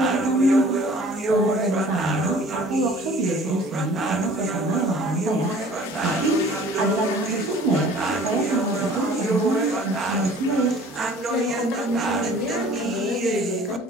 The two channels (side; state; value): both; normal; correlation 0.50